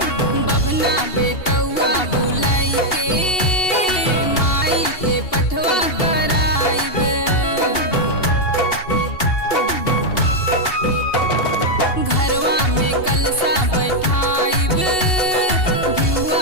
बबना बेटौआ बुलाई के माई के पठवा कराइब। घरवा में कलसा बैठाइब,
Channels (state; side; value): late; right; 2.7 ms